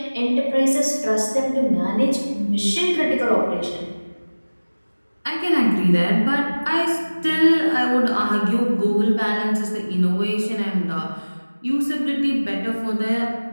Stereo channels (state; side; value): inverted; both; correlation -1.00